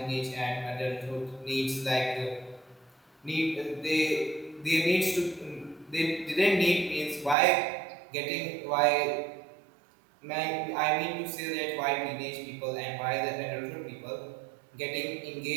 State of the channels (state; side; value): drops out; left; at 7.4 s